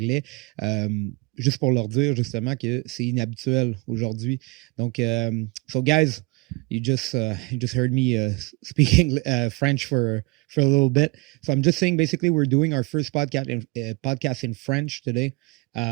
Juste pour leur dire justement que c'est inhabituel aujourd'hui. Donc, so guys, you just heard me speaking French for a little bit. So I'm just saying, basically, we're doing our first podcast in French today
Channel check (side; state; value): left; quieter; 25.9 dB